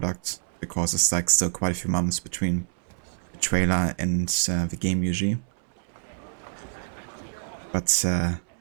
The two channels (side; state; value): left; silent; 60 dB below the other